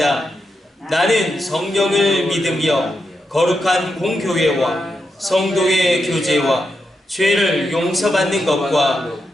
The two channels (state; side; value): normal; both; correlation 0.85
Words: 나는 성령을 믿으며 거룩한 공교회와 성도의 교제와 죄를 용서받는 것과